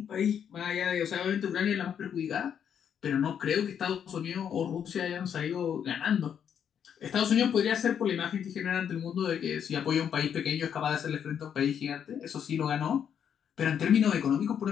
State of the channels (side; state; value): right; quieter; 8.4 dB